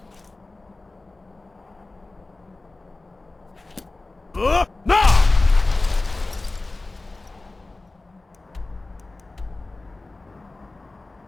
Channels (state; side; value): quieter; right; 3.2 dB